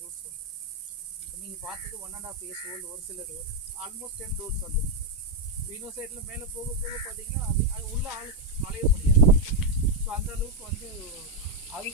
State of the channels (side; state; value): both; normal; correlation 0.02